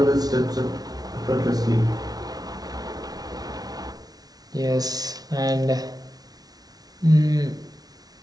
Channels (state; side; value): late; left; 0.19 ms